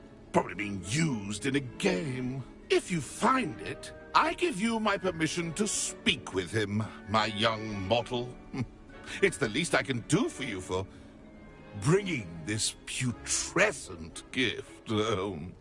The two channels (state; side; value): identical; both; correlation 1.00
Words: Probably being used in a game. If you find it, I give you my permission to speak with him, my young mortal. It's the least I can do for you for bringing this putrescent gift home.